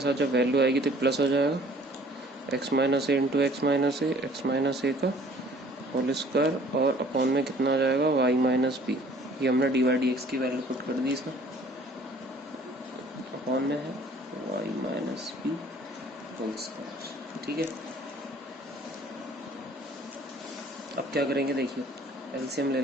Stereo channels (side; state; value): both; normal; correlation 0.54